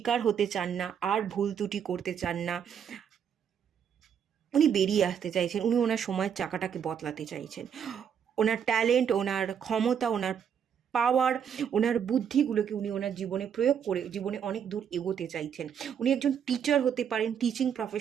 হতে চান না, আর ভুল ত্রুটি করতে চান না, উনি বেরিয়ে আসতে চাইছেন, উনি ওনার সময়ের চাকাটাকে বদলাতে চাইছেন। ওনার ট্যালেন্ট, ওনার ক্ষমতা, ওনার পাওয়ার, ওনার বুদ্ধিগুলোকে উনি ওনার জীবনে প্রয়োগ করে জীবনে অনেক দূর এগোতে চাইছেন। উনি একজন টিচার হতে পারেন, টিচিং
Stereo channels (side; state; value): left; quieter; 8.0 dB